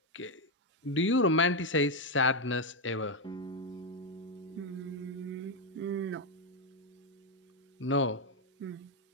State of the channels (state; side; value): normal; both; correlation 0.04